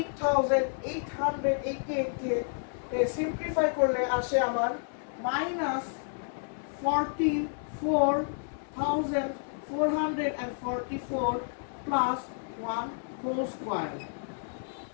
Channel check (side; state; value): right; silent; digital silence